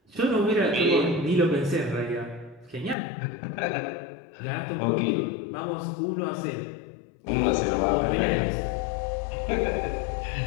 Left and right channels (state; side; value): drops out; right; at 3.0 s